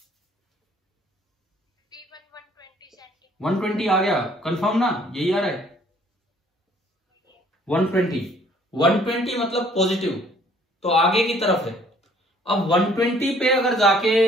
120 आ गया, कंफर्म ना, यही आ रहा है 120 मतलब पॉजिटिव, तो आगे की तरफ है। अब 120 पे अगर जाके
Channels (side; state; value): both; normal; correlation 0.59